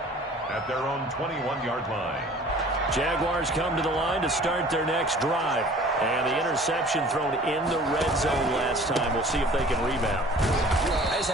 at their own 21-yard line. Jaguars come to the line to start their next drive. And the interception thrown in the red zone last time. We'll see if they can rebound. I just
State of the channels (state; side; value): normal; both; correlation 0.48